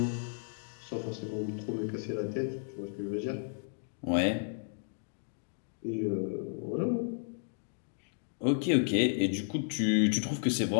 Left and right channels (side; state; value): right; silent; digital silence